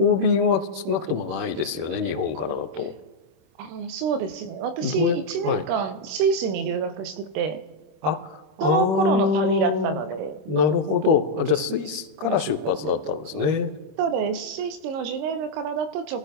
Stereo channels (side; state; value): left; late; 26 ms